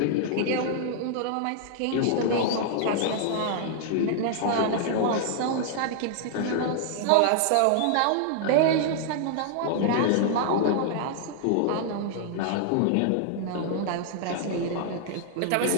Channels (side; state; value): both; different; correlation 0.00